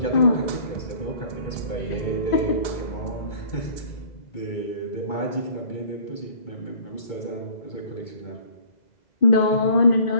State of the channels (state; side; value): late; right; 2.0 ms